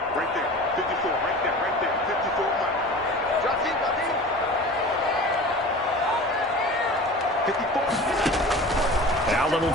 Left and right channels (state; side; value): normal; both; correlation 0.38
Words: Right there, 54, right there, 54. Drop in, drop in. 54. Allen will